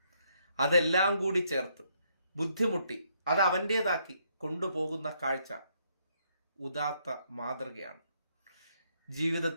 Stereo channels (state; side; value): inverted; both; correlation -0.72